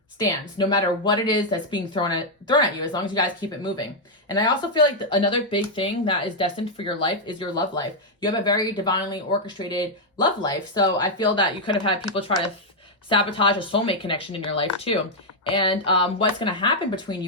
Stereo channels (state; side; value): normal; both; correlation -0.01